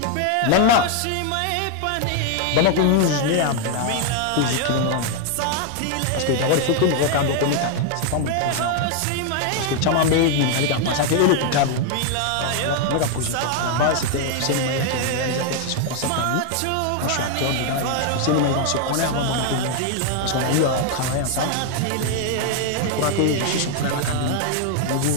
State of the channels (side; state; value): both; different; correlation 0.00